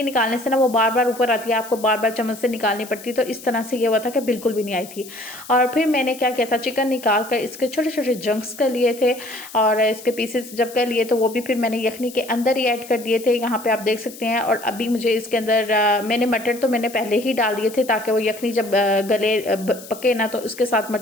نکالنے سے نا وہ بار بار اوپر آتی ہے، آپ کو بار بار چمچ سے نکالنی پڑتی، تو اس طرح سے یہ ہوا تھا کہ بالکل بھی نہیں آئی تھی۔ اور پھر میں نے کیا کیا تھا، چکن نکال کر اس کے چھوٹے چھوٹے جنکس کر لیے تھے، اور اس کے پیسز جب کر لیے تو وہ بھی پھر میں نے یخنی کے اندر ہی ایڈ کر دیے تھے، یہاں پہ آپ دیکھ سکتے ہیں۔ اور ابھی مجھے اس کے اندر میں نے مٹر تو میں نے پہلے ہی ڈال دیے تھے تاکہ وہ یخنی جب گلے پکے نا تو اس کے ساتھ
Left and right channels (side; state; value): left; noise; hiss, 16 dB below the sound